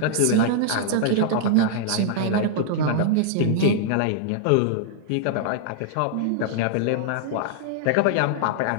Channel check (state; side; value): different; both; correlation -0.01